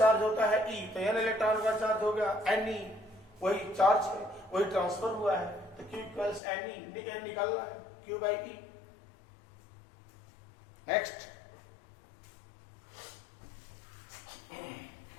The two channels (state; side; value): drops out; right; at 6.4 s